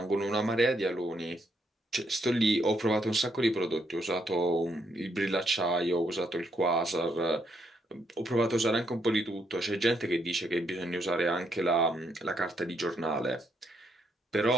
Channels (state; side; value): normal; both; correlation 0.75